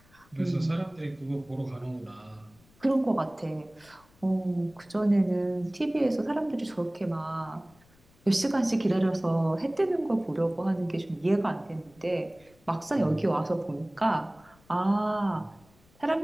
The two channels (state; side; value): noise; left; rumble, 30 dB below the sound